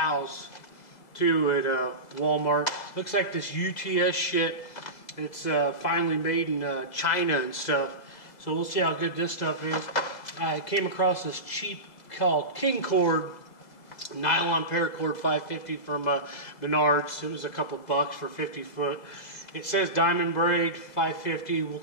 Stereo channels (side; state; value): right; late; 2.0 ms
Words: too at Walmart. Looks like this UTS shit. It's finally made in China and stuff. So we'll see how good this stuff is. I came across this cheap called King Cord nylon paracord 550 from Menards. It was a couple bucks for 50 foot. It says diamond braid 550. We'll